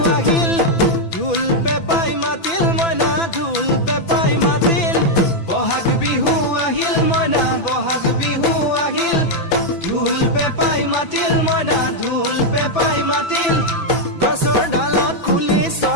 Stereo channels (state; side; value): late; right; 6.0 ms